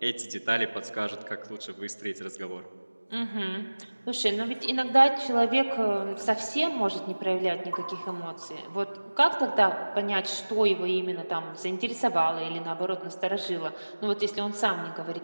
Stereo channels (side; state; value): both; inverted; correlation -1.00